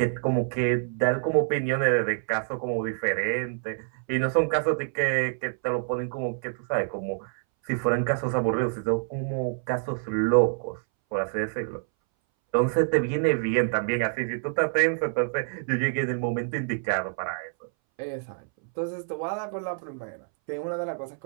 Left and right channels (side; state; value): left; silent; 60 dB below the other